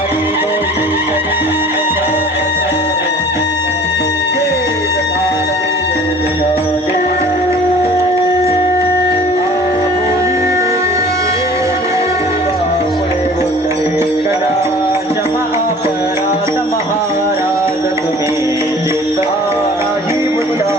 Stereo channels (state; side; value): normal; both; correlation 0.47